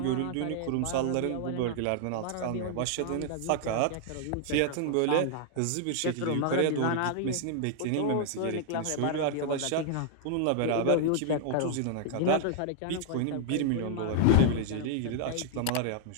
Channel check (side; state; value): both; different; correlation -0.01